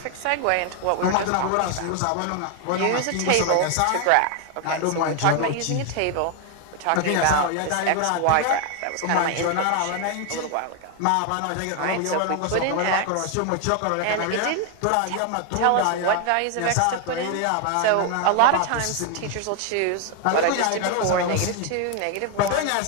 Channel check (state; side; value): different; both; correlation 0.01